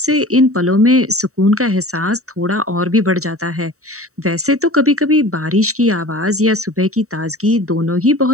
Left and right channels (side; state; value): left; late; 0.64 ms